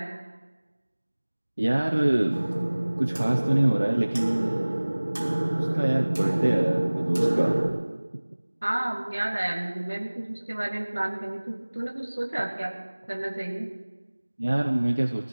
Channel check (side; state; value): both; inverted; correlation -1.00